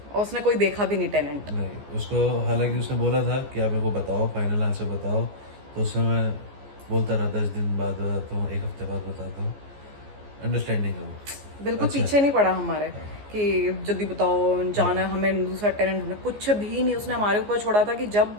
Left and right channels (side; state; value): left; late; 14 ms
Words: और उसने कोई देखा भी नहीं टेनेंट। नहीं, उसको हालांकि उसने बोला था कि आप मेरे को बताओ, फाइनल आंसर बताओ। तो उसमें मैं बोलता रहा 10 दिन बाद बताता हूँ, 1 हफ्ते बाद बताता हूँ। अंडरस्टैंडिंग है वो। बिल्कुल अच्छा। पीछे नहीं पड़ा हमारे कि जल्दी बताओ, जाना है हमें, दूसरा टेनेंट ढूंढना, कुछ भी नहीं। उसने हमारे ऊपर छोड़ा था कि जब